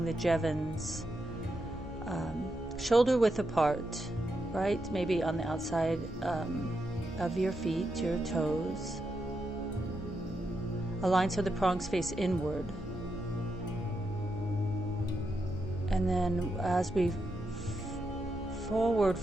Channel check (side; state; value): both; normal; correlation 0.84